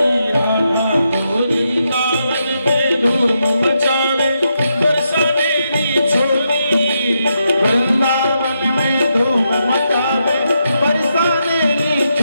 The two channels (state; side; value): inverted; both; correlation -0.82